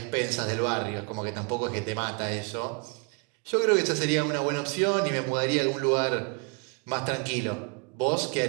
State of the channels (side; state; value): left; quieter; 31.8 dB